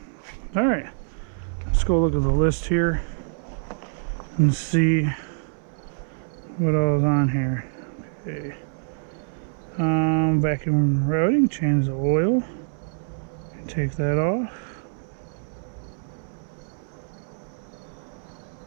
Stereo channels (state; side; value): silent; left; 61 dB below the other